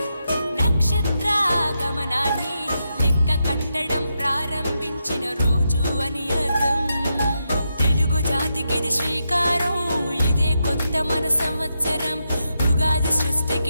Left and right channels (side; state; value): both; inverted; correlation -0.85